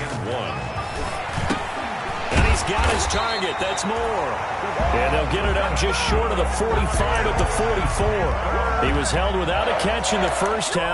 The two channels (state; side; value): identical; both; correlation 1.00